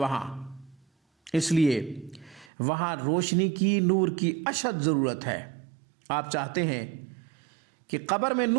اس لیے وہاں روشنی کی، نور کی اشد ضرورت ہے۔ آپ چاہتے ہیں کہ قبر میں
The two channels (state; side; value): drops out; left; at 2.5 s